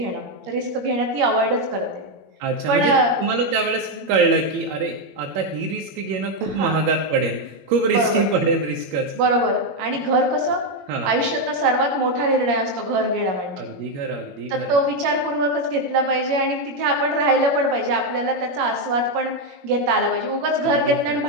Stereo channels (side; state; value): left; late; 21 ms